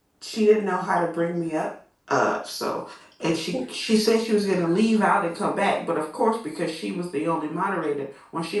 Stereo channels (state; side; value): identical; both; correlation 1.00